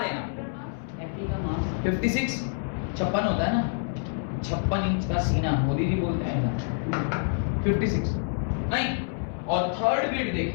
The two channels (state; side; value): silent; right; 60 dB below the other